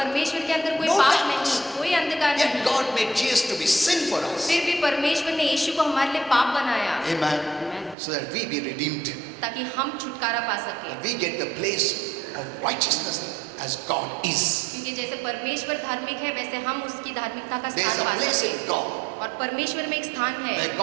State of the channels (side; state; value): left; drops out; at 8.0 s